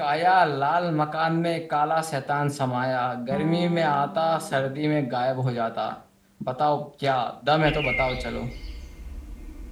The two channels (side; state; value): both; identical; correlation 1.00